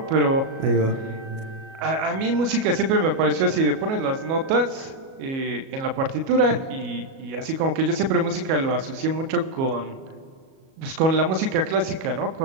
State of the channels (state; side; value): late; left; 37 ms